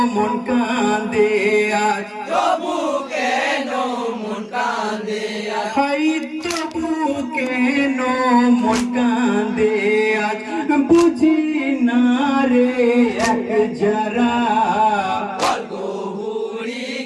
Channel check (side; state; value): both; identical; correlation 1.00